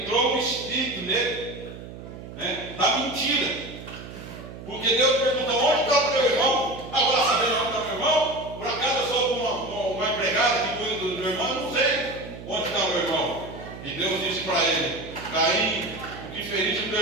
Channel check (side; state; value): right; noise; hum, 13 dB below the sound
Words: o espírito nele, né, da mentira. Porque Deus perguntou, onde está o teu irmão? Agora sabendo onde está o meu irmão? Por acaso eu sou uma empregada que cuida do meu irmão? Eu não sei onde está o meu irmão. E Deus disse para ele, Caim, o que feriste o teu